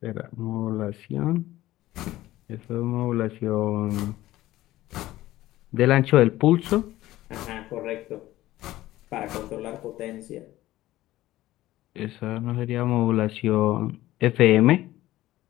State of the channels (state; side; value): quieter; right; 15.9 dB